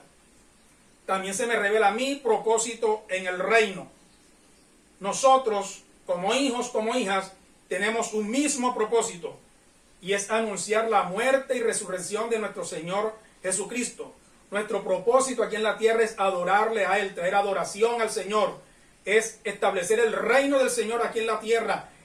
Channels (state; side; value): identical; both; correlation 1.00